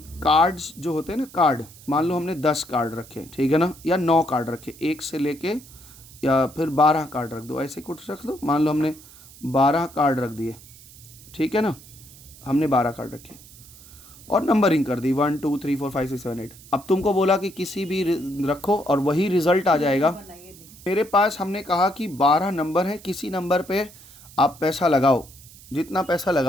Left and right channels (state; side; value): noise; right; hiss, 21 dB below the sound